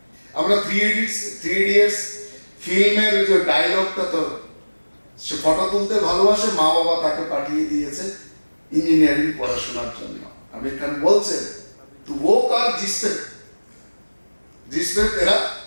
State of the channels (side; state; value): both; inverted; correlation -1.00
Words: আমরা 3 ইডিয়টস ফিল্মের যে ডায়লগটা, তো সে ফটো তুলতে ভালোবাসে, মা বাবা তাকে পাঠিয়ে দিয়েছে ইঞ্জিনিয়ারিং পড়াশোনার জন্য। আমির খান বলছে, তু वो कर जिसपे तेरा